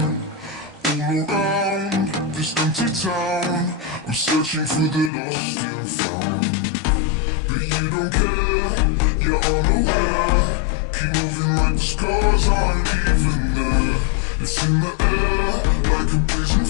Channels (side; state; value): right; drops out; at 5.1 s